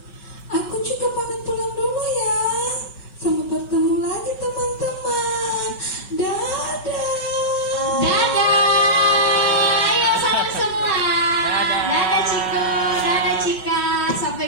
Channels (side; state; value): right; late; 5.3 ms